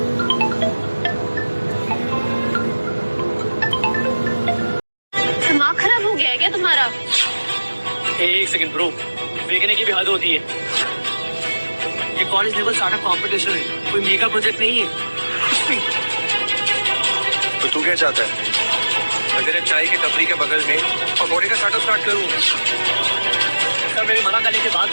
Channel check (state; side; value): inverted; both; correlation -1.00